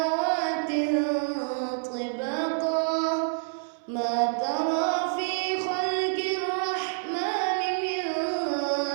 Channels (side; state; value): left; silent; 60 dB below the other